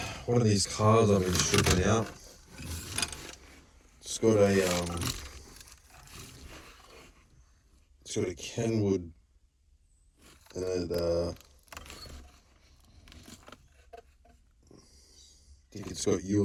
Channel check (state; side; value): identical; both; correlation 1.00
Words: one of these cars I've been stripping out, it's got a Kenwood, and I think it's got